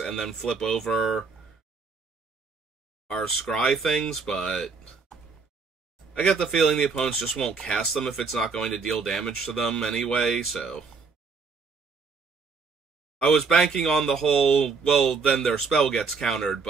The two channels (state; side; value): quieter; left; 4.8 dB